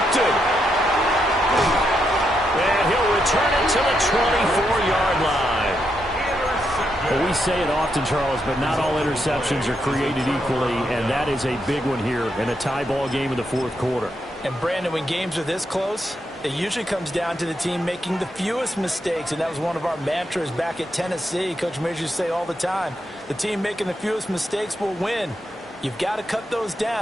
And he'll return it to the 24-yard line. Well, we say it often, Charles, but not all interceptions are created equally, and that is a big one here in a tie ball game in the 4th quarter. And, Brandon, when games are this close, it usually comes down to the team making the fewest mistakes, and that was one of our mantras back at Tennessee. Coach Mears used to say all the time, the team making the fewest mistakes will win. You've got to cut those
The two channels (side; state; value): both; normal; correlation 0.81